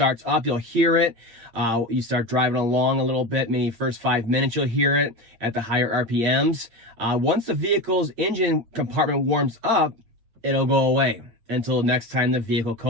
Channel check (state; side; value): late; left; 8.8 ms